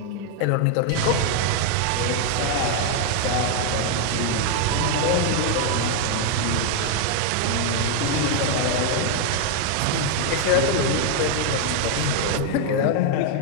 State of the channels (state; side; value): different; both; correlation 0.01